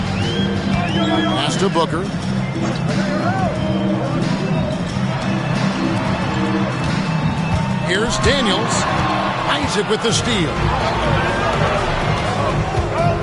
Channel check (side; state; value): both; identical; correlation 1.00